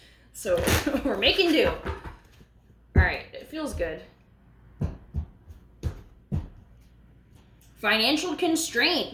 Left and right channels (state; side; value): identical; both; correlation 1.00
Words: So we're making do. All right, it feels good. Financial